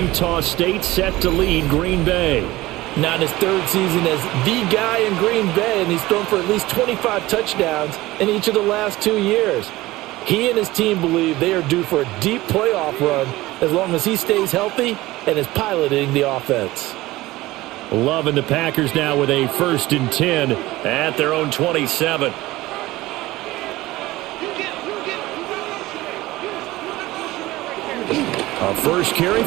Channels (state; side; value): quieter; left; 18.3 dB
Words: State set to lead Green Bay. Now in his 3rd season as the guy in Green Bay, and he's thrown for at least 25 touchdowns in each of the last 2 years. He and his team believe they are due for a deep playoff run as long as he stays healthy and is piloting the offense. Love and the Packers now with a 1st and 10 at their own 27. Our first carry